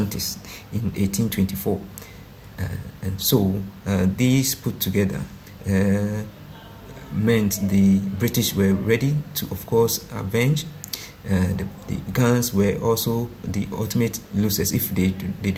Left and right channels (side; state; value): both; identical; correlation 1.00